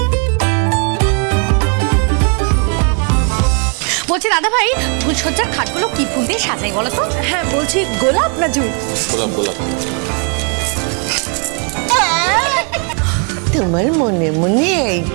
বলছি দাদা ভাই, ফুলসজ্জার খাটগুলো কি ফুল দিয়ে সাজাই বলো তো? হ্যাঁ বলছি, গোলাপ না জুঁই? গোলাপ গোলাপ। তোমার মনে মনে এই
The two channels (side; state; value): left; quieter; 37.3 dB